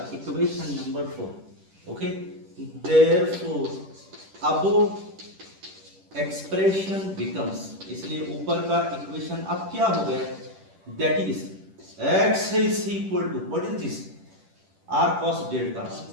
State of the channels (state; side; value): late; left; 10 ms